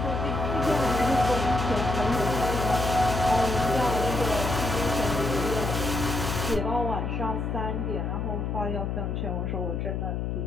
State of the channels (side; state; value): left; noise; hum, 2 dB below the sound